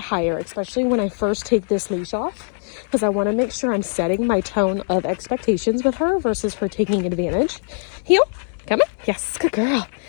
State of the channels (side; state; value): right; silent; 65 dB below the other